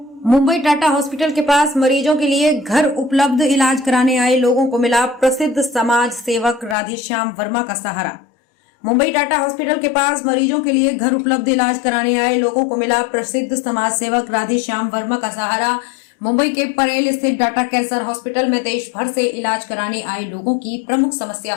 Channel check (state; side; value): drops out; right; at 6.8 s